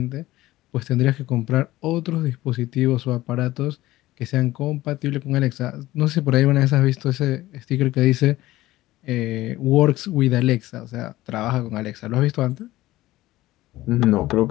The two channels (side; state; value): right; quieter; 16.9 dB